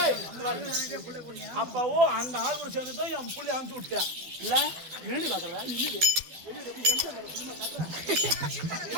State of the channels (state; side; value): late; left; 12 ms